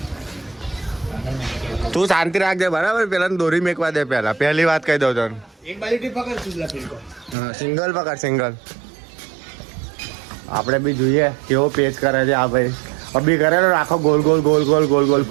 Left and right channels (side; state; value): left; drops out; at 7.4 s